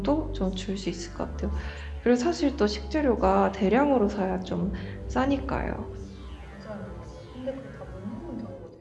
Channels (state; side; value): identical; both; correlation 1.00